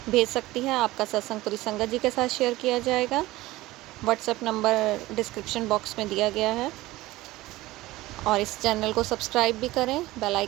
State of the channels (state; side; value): quieter; left; 18.2 dB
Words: भेज सकती है। आपका सत्संग पूरी संगत जी के साथ शेयर किया जाएगा। व्हाट्सएप नंबर डिस्क्रिप्शन बॉक्स में दिया गया है। और इस चैनल को सब्सक्राइब भी करें, बेल